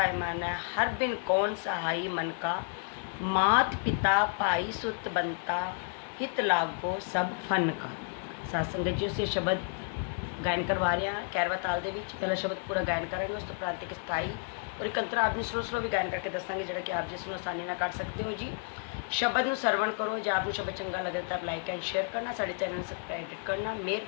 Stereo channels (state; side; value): silent; right; 55 dB below the other